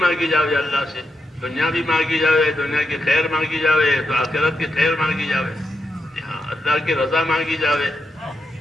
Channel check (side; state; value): both; normal; correlation 0.85